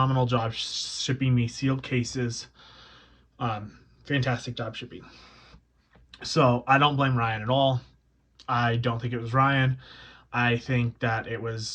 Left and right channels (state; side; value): identical; both; correlation 1.00